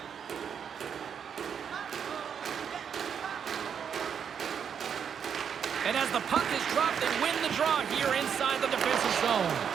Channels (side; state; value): left; quieter; 7.6 dB